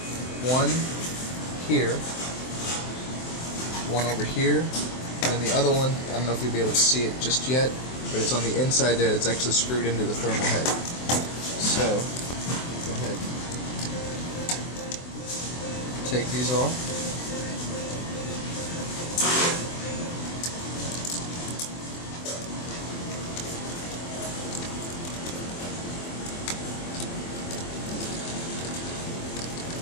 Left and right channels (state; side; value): late; right; 23 ms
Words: one here, one over here, and then the other one, I don't know if you'll be able to see it just yet, but it's on the inside there. It's actually screwed into the thermal head. So, go ahead. Take these off.